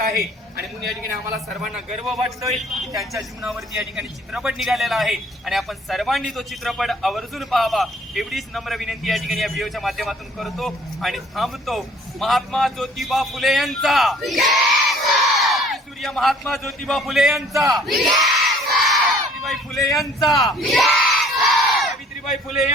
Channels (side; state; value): both; normal; correlation 0.56